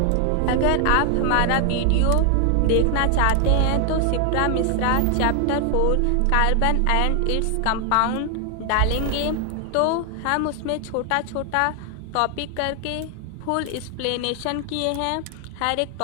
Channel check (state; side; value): different; both; correlation 0.00